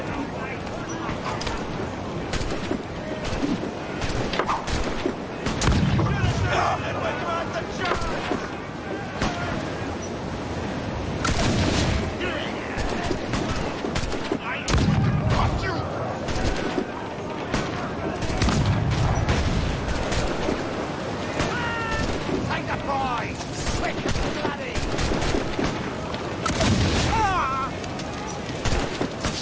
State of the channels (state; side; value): identical; both; correlation 1.00